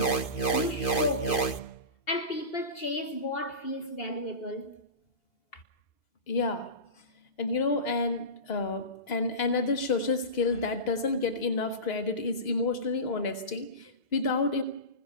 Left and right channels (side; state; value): right; late; 2.5 ms